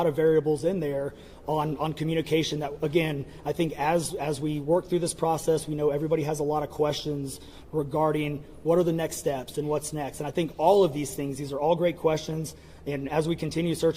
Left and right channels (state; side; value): identical; both; correlation 1.00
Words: of variables in there on communication that, again, I think as we work through this process, we know everybody has a lot of questions regarding what are the next steps and what's next. And I think all of these things, these are all great questions. And as we continue